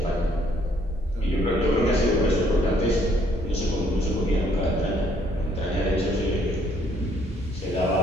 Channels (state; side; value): normal; both; correlation 0.66